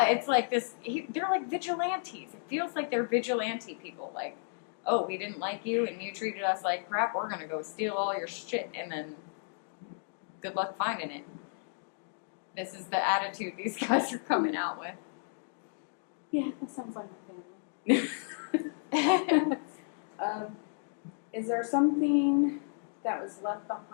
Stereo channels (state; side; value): silent; right; digital silence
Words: it's like this, they're like vigilantes. It feels like they're vigilante people. Like, oh, we didn't like you and you treated us like crap, we're going to go steal all your shit and then good luck finding it. This is the attitude these guys are coming out with. Yeah, that sounds like my family. Is there something that was left